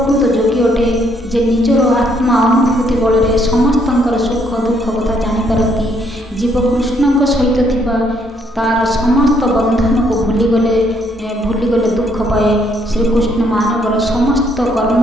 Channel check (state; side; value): normal; both; correlation 0.70